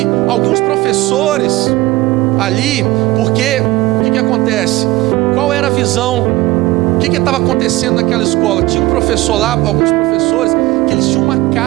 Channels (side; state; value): left; quieter; 19.1 dB